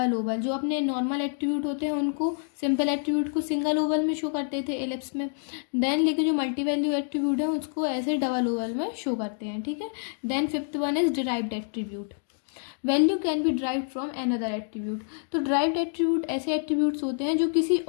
ओवल। जो अपने नॉर्मल एट्रीब्यूट होते हैं उनको, सिंपल एट्रीब्यूट को सिंगल ओवल में शो करते थे एलिप्स में। देन लेकिन जो मल्टी वैल्यू एट्रीब्यूट है उसको ऐसे डबल ओवल में शो करते हैं, ठीक है। Then fifth one is derived attribute. Value can be derived from another attribute. तो ड्राइव्ड एट्रीब्यूट ऐसे एट्रीब्यूट्स होते हैं जो किसी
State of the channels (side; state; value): right; silent; 60 dB below the other